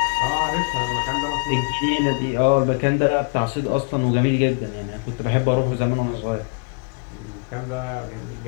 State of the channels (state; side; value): quieter; right; 35.1 dB